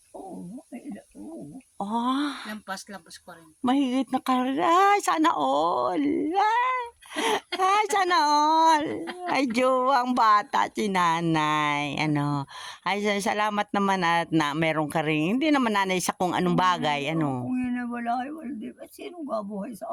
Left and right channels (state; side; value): identical; both; correlation 1.00